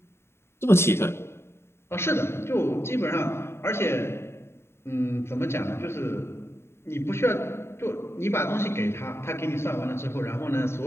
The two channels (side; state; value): right; late; 0.12 ms